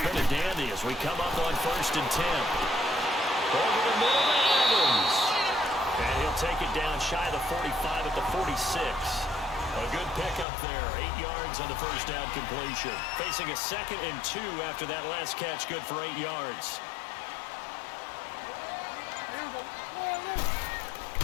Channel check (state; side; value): drops out; right; at 10.5 s